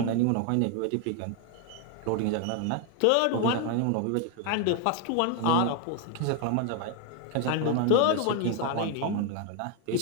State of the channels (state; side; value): different; both; correlation 0.01